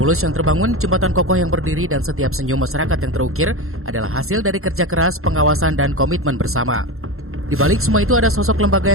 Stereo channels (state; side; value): late; left; 0.62 ms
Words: yang terbangun, jembatan kokoh yang berdiri, dan setiap senyum masyarakat yang terukir adalah hasil dari kerja keras, pengawasan, dan komitmen bersama. Di balik semua itu ada sosok lembaga